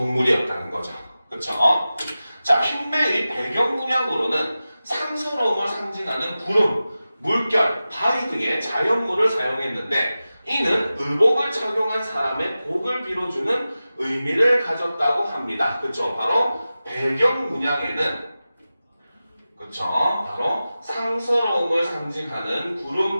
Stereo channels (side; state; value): both; inverted; correlation -0.95